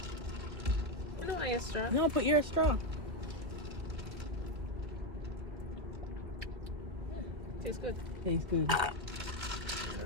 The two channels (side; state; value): left; late; 2.2 ms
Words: I don't like a straw. No, put your straw. Tastes good. Tastes good.